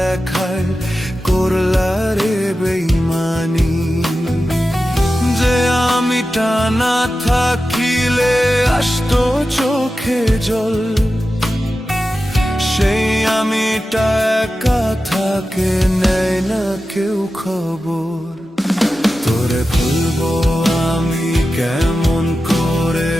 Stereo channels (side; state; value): both; normal; correlation 0.93